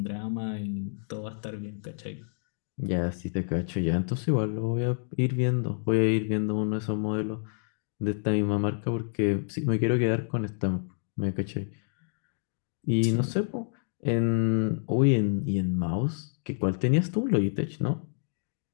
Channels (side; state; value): right; silent; digital silence